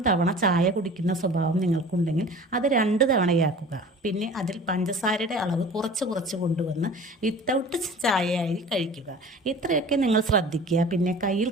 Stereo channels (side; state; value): both; normal; correlation 0.42